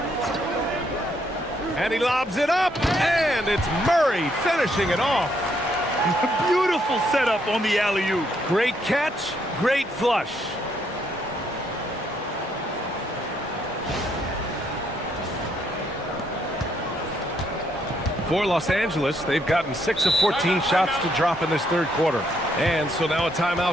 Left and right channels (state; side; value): normal; both; correlation 0.73